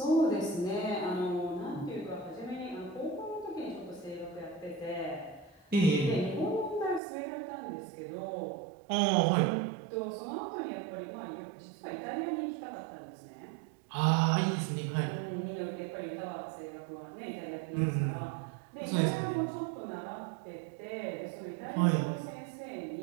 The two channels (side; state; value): left; drops out; at 7.0 s